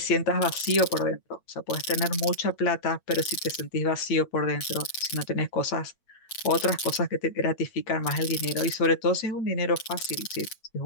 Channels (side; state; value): right; late; 8.6 ms